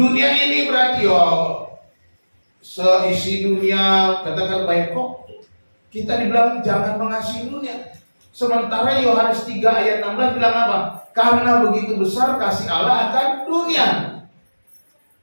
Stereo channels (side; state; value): both; inverted; correlation -1.00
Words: ini berarti seisi dunia katakan baik kok? Kita dibilang jangan mengasihi dunia. Sementara Yohanes 3 ayat 16 bilang apa? Karena begitu besar kasih Allah akan dunia.